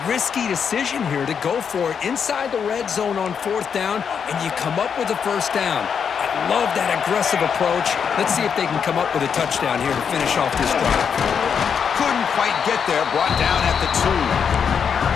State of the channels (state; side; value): quieter; right; 7.0 dB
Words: risky decision here to go for it inside the red zone on 4th down, and you come up with a first down. I love that aggressive approach. Let's see if they can come up with a touchdown here to finish off this drive. Couldn't quite get there, brought down at the 2.